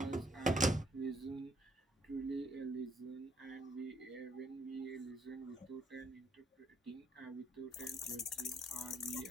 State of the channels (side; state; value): both; normal; correlation 0.69